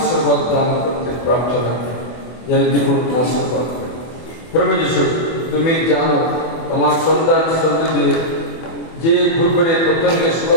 দান করতে প্রার্থনা করে, যেন দ্বিগুণ আশীর্বাদ করে। প্রভু যিশু তুমি জানো তোমার সন্তান সন্ততি যে ঘুরঘুরে পতঙ্গের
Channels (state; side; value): late; right; 24 ms